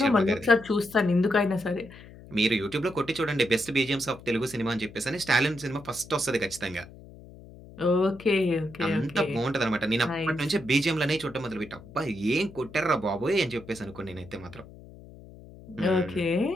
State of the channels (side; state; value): left; noise; hum, 19 dB below the sound